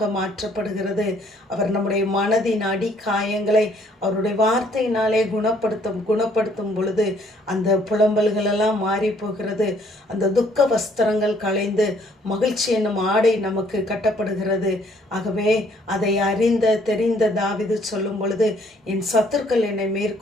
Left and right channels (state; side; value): normal; both; correlation 0.64